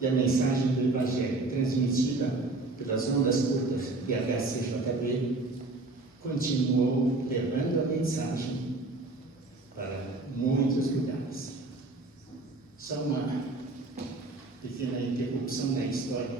E a mensagem do Evangelho, transmitida pelas ondas curtas de HCJB, continuou levando a mensagem para muitos lugares. Só uma pequena interrupção na história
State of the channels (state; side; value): quieter; left; 3.2 dB